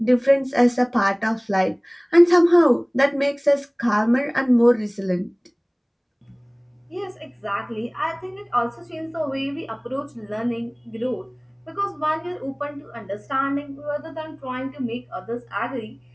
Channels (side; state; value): both; identical; correlation 1.00